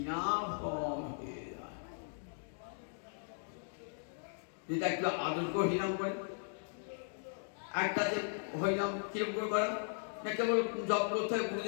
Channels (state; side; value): silent; right; digital silence